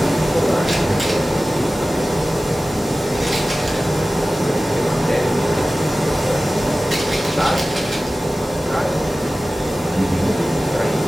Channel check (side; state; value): both; normal; correlation 0.96